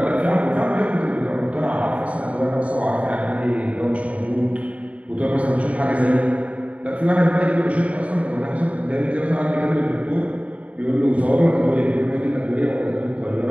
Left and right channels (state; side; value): late; left; 0.066 ms